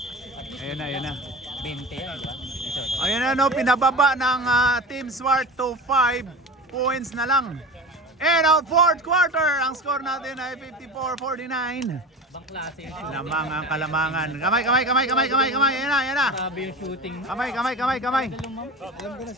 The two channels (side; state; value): both; normal; correlation 0.32